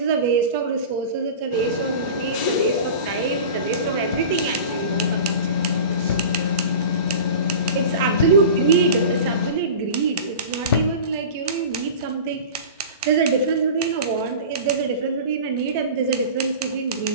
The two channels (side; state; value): both; inverted; correlation -0.35